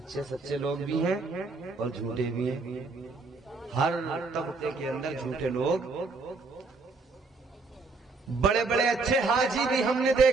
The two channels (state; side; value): quieter; left; 3.9 dB